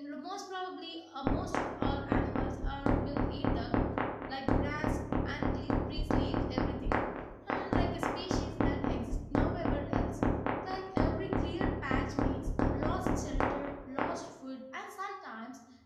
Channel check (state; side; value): identical; both; correlation 1.00